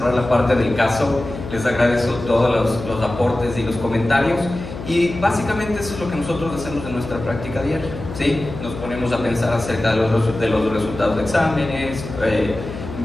la parte del caso. Les agradezco todos los aportes y los comentarios. Y básicamente eso es lo que nosotros hacemos en nuestra práctica diaria, ¿sí? Nos ponemos a pensar acerca de los resultados de exámenes,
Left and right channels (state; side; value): noise; left; hum, 10 dB below the sound